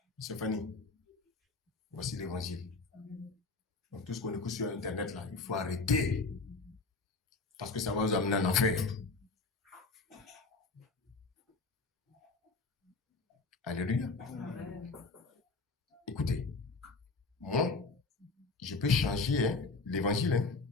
Stéphanie, voici l'évangile. Donc tout ce qu'on écoute sur Internet là, il faut arrêter. Parce que ça va vous amener en enfer. Alléluia. Amen. Écoutez, moi, je peux changer l'évangile. Hein.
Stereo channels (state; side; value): quieter; right; 3.8 dB